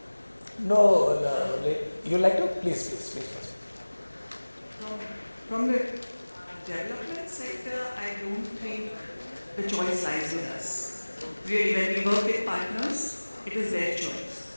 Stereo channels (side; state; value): both; inverted; correlation -1.00